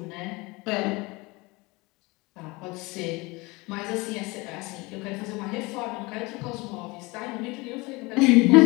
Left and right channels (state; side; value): quieter; right; 24.4 dB